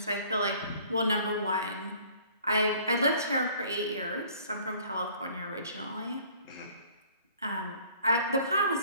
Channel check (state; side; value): inverted; both; correlation -0.54